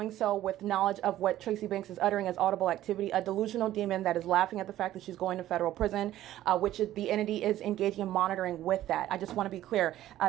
so with knowledge of what Tracy Banks is uttering as audible activity, a delusional demon that is laughing at the fact that she's going to federal prison, which is, the entity is engaging in monitoring with that. I just want to be clear.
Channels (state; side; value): quieter; left; 13.6 dB